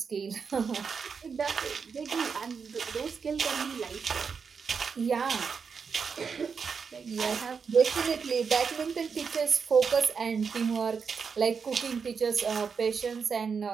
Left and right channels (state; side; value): quieter; left; 5.9 dB